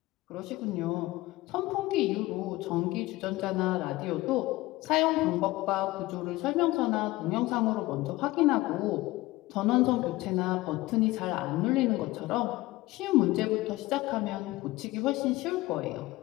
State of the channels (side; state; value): right; quieter; 19.1 dB